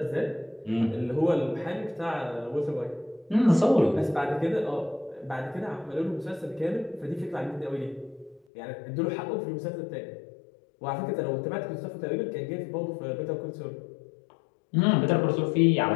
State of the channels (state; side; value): drops out; right; at 8.4 s